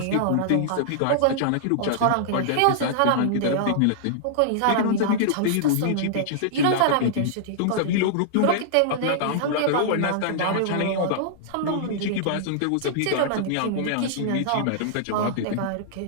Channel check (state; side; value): different; both; correlation -0.01